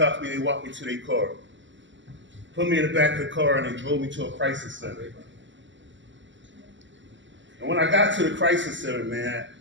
me, they walked me to their car. Put me in the back of the car, and they drove me to a crisis center. And when I got to the crisis center, man,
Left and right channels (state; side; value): late; left; 0.54 ms